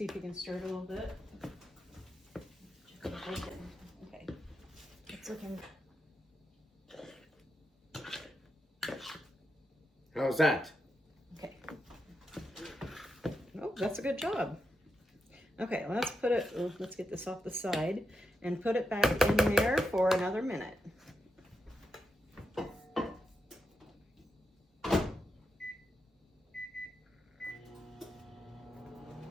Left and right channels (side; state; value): both; normal; correlation 0.86